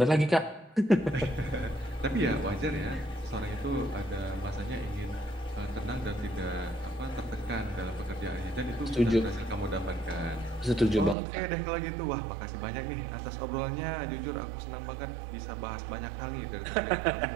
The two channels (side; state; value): left; drops out; at 11.2 s